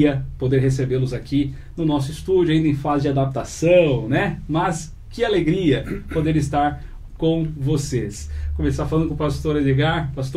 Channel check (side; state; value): both; identical; correlation 1.00